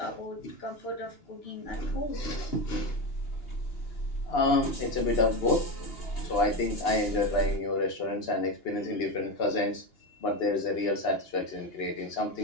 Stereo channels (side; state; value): right; late; 2.9 ms